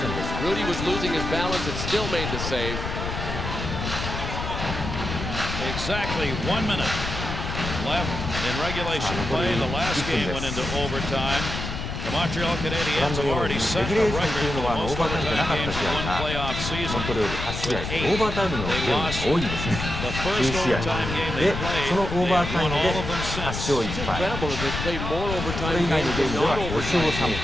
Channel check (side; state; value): left; noise; rumble, 5 dB below the sound